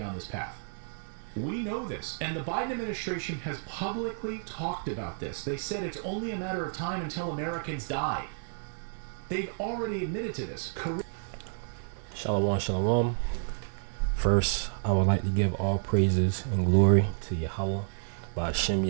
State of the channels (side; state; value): left; silent; digital silence